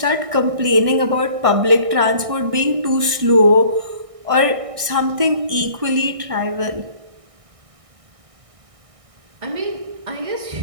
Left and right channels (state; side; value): late; left; 1.6 ms